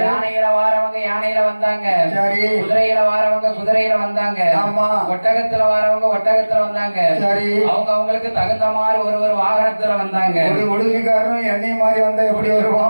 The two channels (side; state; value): both; inverted; correlation -1.00